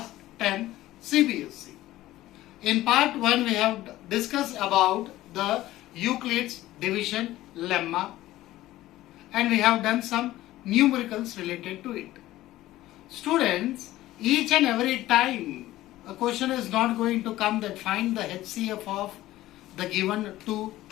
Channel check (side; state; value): right; quieter; 15.7 dB